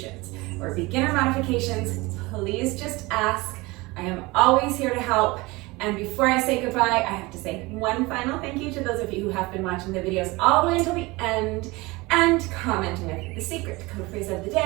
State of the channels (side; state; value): left; quieter; 22.9 dB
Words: or beginner modifications, please just ask. I am always here to help. And before I say goodbye, I have to say one final thank you to those of you who have been watching the videos all the way until the end and commenting with the secret code phrase of the